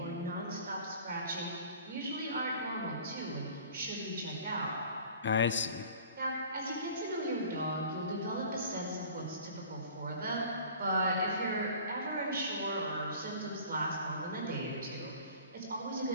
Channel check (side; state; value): both; inverted; correlation -0.45